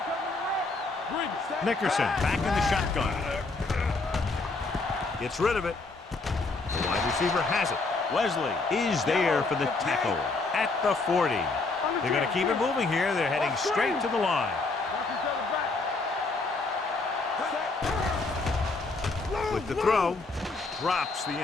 coming to red. Nickerson back in the shotgun. Gets rid of it. The wide receiver has it. Wesley is there for the tackle at the 40. They're going to keep it moving here. They're heading straight to the line. With the throw, drops the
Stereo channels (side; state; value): right; quieter; 3.6 dB